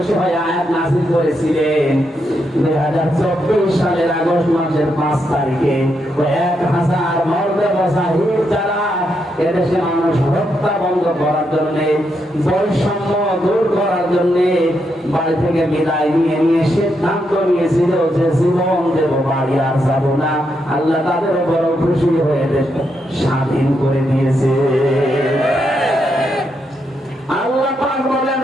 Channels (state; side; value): normal; both; correlation 0.81